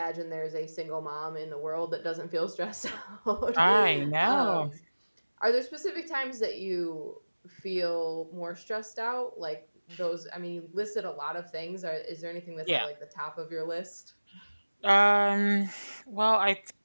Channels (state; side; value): inverted; both; correlation -1.00